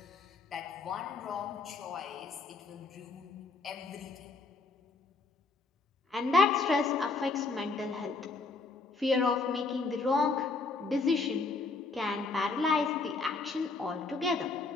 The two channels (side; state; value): right; quieter; 3.9 dB